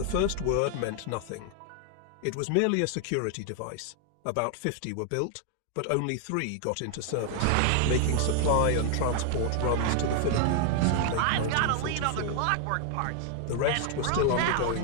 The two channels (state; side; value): different; both; correlation 0.00